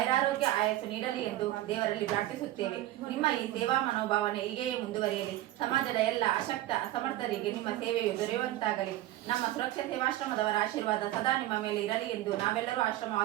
ಆಯಸ್ಸು ನೀಡಲಿ ಎಂದು ದೇವರಲ್ಲಿ ಪ್ರಾರ್ಥಿಸುತ್ತೇವೆ. ನಿಮ್ಮ ಈ ಸೇವಾ ಮನೋಭಾವನೆ ಹೀಗೆಯೇ ಮುಂದುವರಿಯಲಿ. ಸಮಾಜದ ಎಲ್ಲ ಅಶಕ್ತ ಅಸಮರ್ಥರಿಗೆ ನಿಮ್ಮ ಸೇವೆಯು ದೊರೆಯುವಂತಾಗಲಿ. ನಮ್ಮ ಸುರಕ್ಷಾ ಸೇವಾಶ್ರಮದವರ ಆಶೀರ್ವಾದ ಸದಾ ನಿಮ್ಮ ಮೇಲೆ ಇರಲಿ ಎಂದು ನಾವೆಲ್ಲರೂ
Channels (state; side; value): quieter; left; 15.1 dB